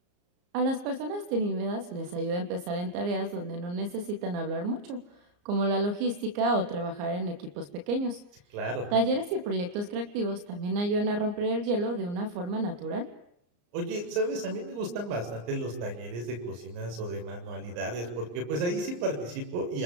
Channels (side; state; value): left; late; 34 ms